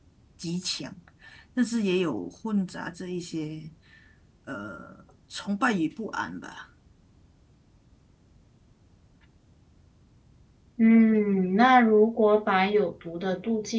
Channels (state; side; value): identical; both; correlation 1.00